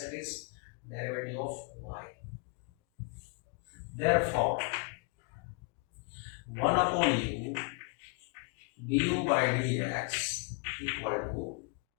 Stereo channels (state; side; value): quieter; right; 33.8 dB